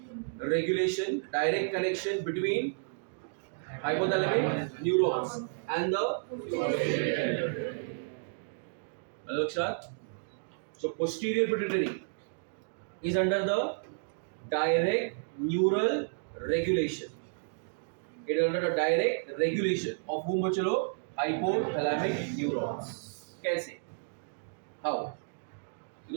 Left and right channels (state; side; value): silent; left; digital silence